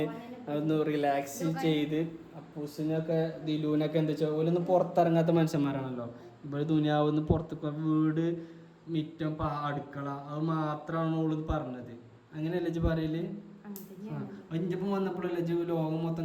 ഒന്ന് റിലാക്സ് ചെയ്ത് അപ്പൂസിനൊക്കെ ദിലുവിനൊക്കെ എന്താ വെച്ചാൽ ഓലൊന്ന് പുറത്തിറങ്ങാത്ത മനുഷ്യന്മാരാണല്ലോ. ഇവിടെ ദുനിയാവുന്ന് പുറത്തേക്ക് വീട് മിറ്റം അടുക്കള അത് മാത്രമാണ് ഓളിത് പറഞ്ഞത്. അങ്ങനെയല്ലേ ഇജ്ജ് പറയല്? ഇഞ്ചപ്പം വന്നപ്പോഴല്ലേ ഇജ്ജ് ലോകം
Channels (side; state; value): both; identical; correlation 1.00